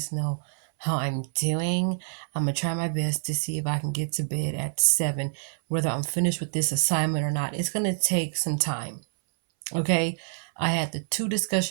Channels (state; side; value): silent; left; 60 dB below the other